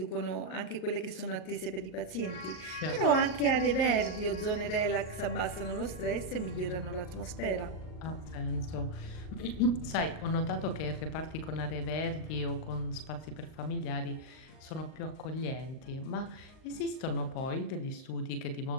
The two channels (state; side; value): late; right; 38 ms